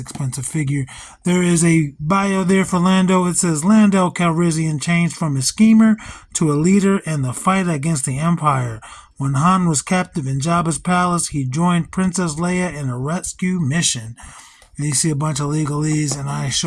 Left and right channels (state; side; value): identical; both; correlation 1.00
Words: figure. There is a bio there for Lando. It says, Lando Calrissian changed from a schemer to a leader in the fight against the Empire. When Han was captive in Jabba's palace, he joined Princess Leia in a rescue mission. And you see a bunch of legalese, and I